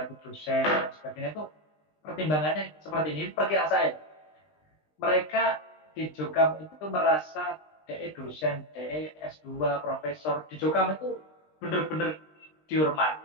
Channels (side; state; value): right; late; 20 ms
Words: itu dosen dan sebagainya itu pertimbangannya seperti ini. Perkiraan saya, mereka di Jokam itu merasa DE dosen, DE S2, profesor di Jokam itu benar-benar